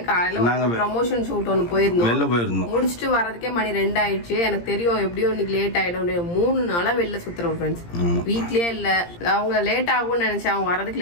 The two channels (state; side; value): late; right; 17 ms